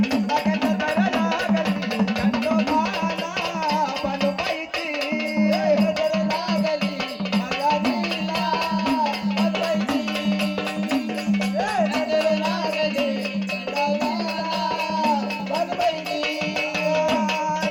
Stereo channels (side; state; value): both; identical; correlation 1.00